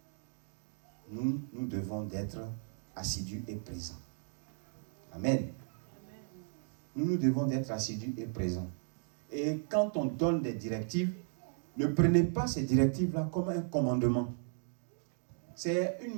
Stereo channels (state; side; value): silent; left; digital silence